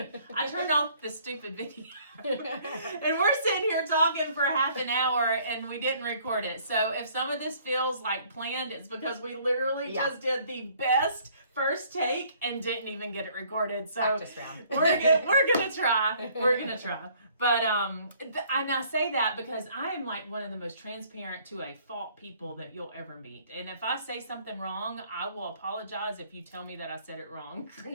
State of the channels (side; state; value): both; inverted; correlation -0.59